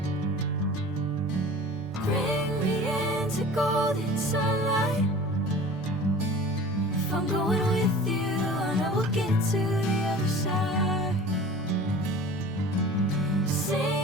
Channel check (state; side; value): normal; both; correlation 0.41